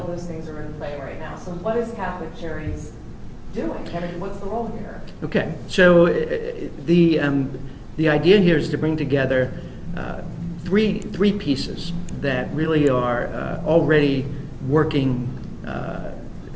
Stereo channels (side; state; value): both; identical; correlation 1.00